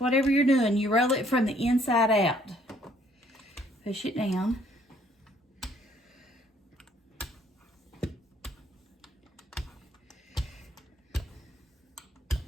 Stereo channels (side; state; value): both; normal; correlation 0.63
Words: you're doing, you roll it from the inside out. Push it down.